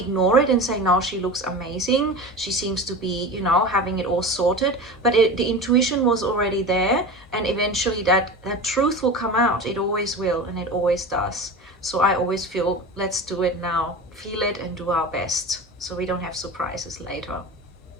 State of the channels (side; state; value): both; normal; correlation 0.31